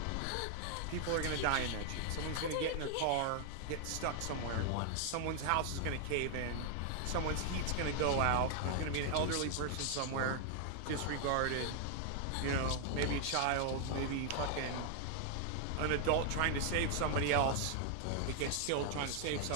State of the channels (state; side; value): different; both; correlation 0.00